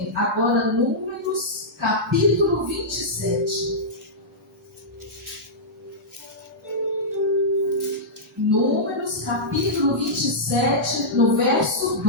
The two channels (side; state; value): both; normal; correlation -0.13